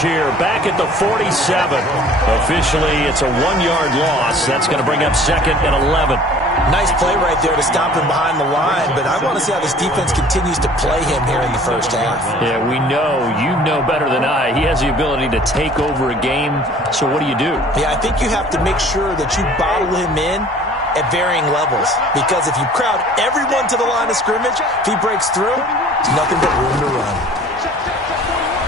here, back at the 47. Officially, it's a 1-yard loss. That's going to bring up 2nd and 11. Nice play right there to stop him behind the line, but I want to see how this defense continues to play him here in the first half. Yeah, we know, you know better than I, he has the ability to take over a game, so what do you do? Yeah, I think you have to make sure that you bottle him in at varying levels, because if you crowd everyone to the line of scrimmage, if he breaks through, it's nothing but room to run.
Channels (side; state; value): both; normal; correlation 0.50